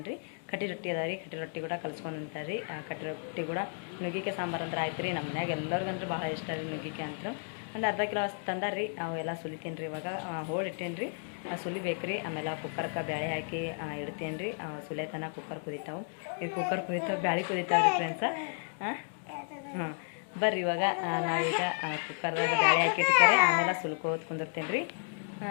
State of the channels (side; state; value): right; silent; 56 dB below the other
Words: ರೀ. ಕಟ್ಟಿ ರೊಟ್ಟಿ ಅದ ರೀ, ಕಟ್ಟಿ ರೊಟ್ಟಿ ಕೂಡ ಕಲ್ಸ್ಕೊಂಡು ಅಂತಾರೆ ರೀ. ಕಟ್ಟಿ ರೊಟ್ಟಿ ಕೂಡ ನುಗ್ಗಿಕಾಯಿ ಸಾಂಬಾರು ಅಂದ್ರೆ ಆಯ್ತು ರೀ. ನಮ್ಮ ಮನ್ಯಾಗ ಎಲ್ಲರಿಗಂದ್ರೆ ಭಾಳ ಇಷ್ಟ ರೀ ನುಗ್ಗಿಕಾಯಿ ಅಂತೂ. ಒಂದು ಅರ್ಧ ಕಿಲೋ ಅಷ್ಟು ತಂದಾರ ರೀ. ಅವೆಲ್ಲ ಸುಲಿತೀನಿ ರೀ. ಇವಾಗ ಹೋಳಿಟ್ಟೇನಿ ರೀ, ಸುಲಿಬೇಕು ರೀ. ಆಮೇಲೆ ಕುಕ್ಕರ್ಗೆ ಬೇಳೆ ಹಾಕಿ ಇಡ್ತೇನೆ ರೀ. ಸುಲಿತನ ಕುಕ್ಕರ್ ಕುದಿತಾವೆ. ಈಗ ಕುಕ್ಕರ್ ಕುದಿತಾವೆ, ಬ್ಯಾಳೆ ಕುದಿತಾವೆ ರೀ ಫ್ರೆಂಡ್ಸ. ಹಾಂ ಬರ್ರಿ, ಇವಾಗ ನಾವೀಗ ಕುಕ್ಕರ್ದಾಗ ಬೇಳೆ ಹಾಕಿ ಇಟ್ತಾರೆ, ಆಮೇಲೆ ಸುಲ್ಕೋದು ಕುಂದಿರ್ತೇನೆ ರೀ.